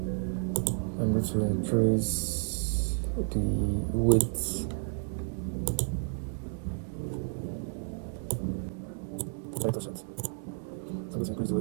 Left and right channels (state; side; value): silent; left; 57 dB below the other